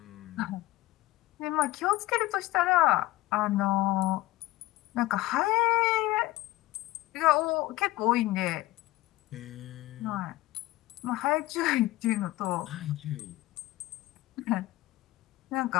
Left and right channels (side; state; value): right; quieter; 17.7 dB